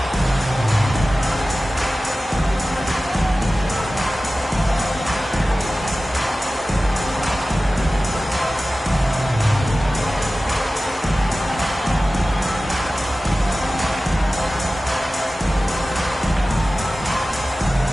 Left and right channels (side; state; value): both; normal; correlation 0.96